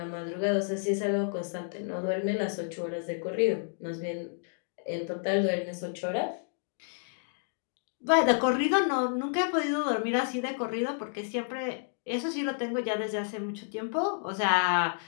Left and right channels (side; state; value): right; silent; digital silence